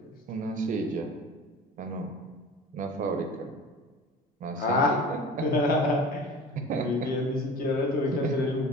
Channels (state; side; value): normal; both; correlation 0.39